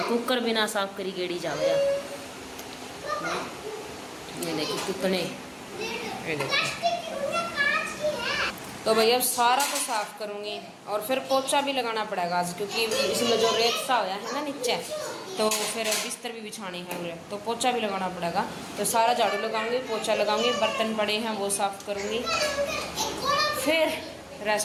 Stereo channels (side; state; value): both; identical; correlation 1.00